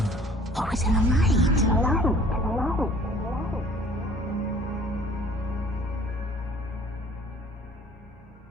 Always in the light.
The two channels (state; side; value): normal; both; correlation 0.52